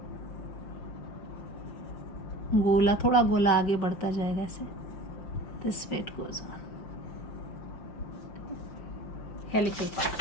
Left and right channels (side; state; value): right; late; 5.8 ms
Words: गोला, थोड़ा गोला आगे बढ़ता जाएगा ऐसे. This way it goes on. Helical